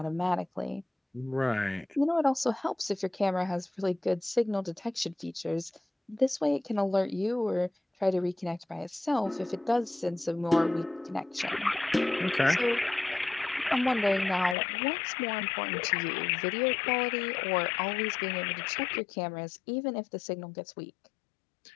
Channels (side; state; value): right; drops out; at 14.6 s